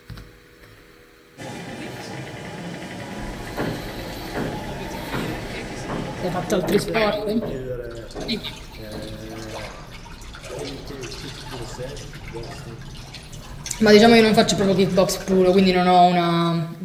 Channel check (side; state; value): both; identical; correlation 1.00